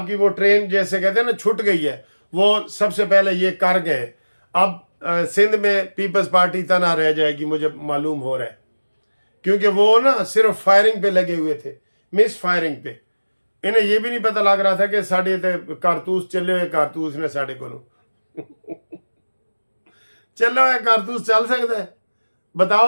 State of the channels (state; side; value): inverted; both; correlation -1.00